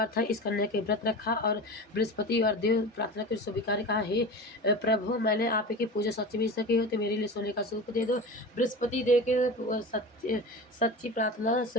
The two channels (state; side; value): normal; both; correlation 0.31